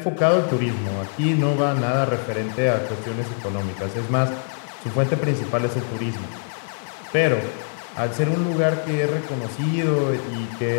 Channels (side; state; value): right; silent; digital silence